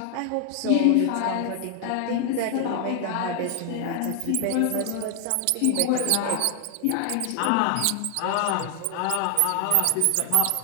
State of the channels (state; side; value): different; both; correlation 0.00